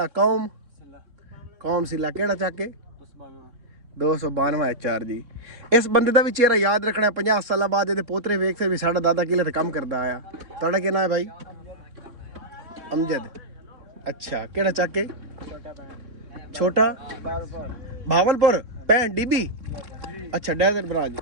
कौम? कौम सिला, केड़ा चाके 292 4 जी। इस बंदे का भी चेहरा याद रखना है। 50 साल बाद ये पोतरे वेख से भी साडा दादा किले ते काम करता आया। तुहाडा क्या नाम है भाई? अमजद। अच्छा केड़ा चाके? छोटा भावलपुर पैन DB। अच्छा डेजर्ट ब्रांच,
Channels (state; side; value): late; left; 3.6 ms